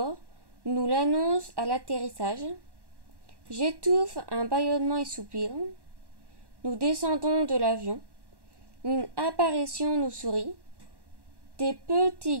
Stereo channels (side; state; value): left; late; 1.1 ms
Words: nous l'annonce à l'atterrissage. J'étouffe un bâillement et soupir. Nous descendons de l'avion. Une apparition nous sourit. Des petits